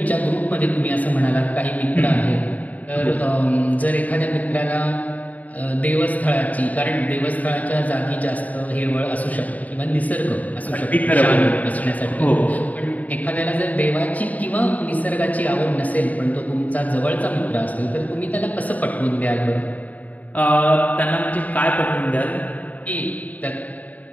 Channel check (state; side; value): late; right; 0.074 ms